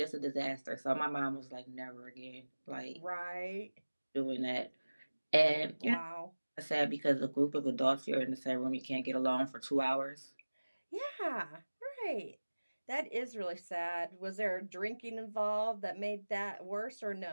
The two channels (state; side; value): inverted; both; correlation -1.00